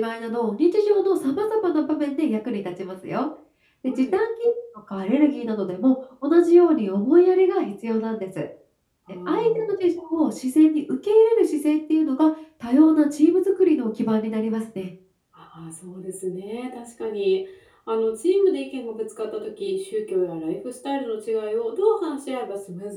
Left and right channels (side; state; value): both; identical; correlation 1.00